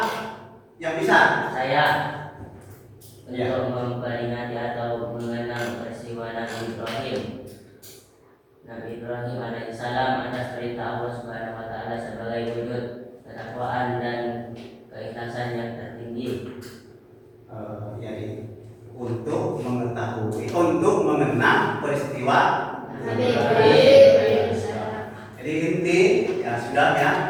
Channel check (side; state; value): both; identical; correlation 1.00